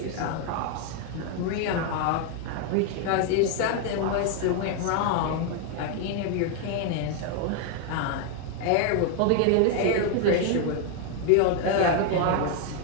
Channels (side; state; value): both; different; correlation 0.01